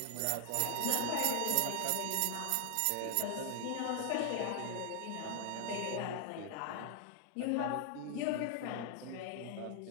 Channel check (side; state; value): both; different; correlation 0.00